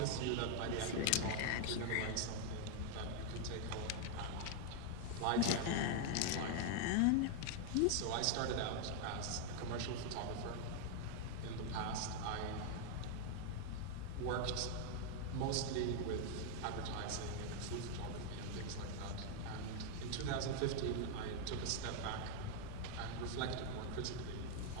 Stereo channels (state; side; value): different; both; correlation 0.00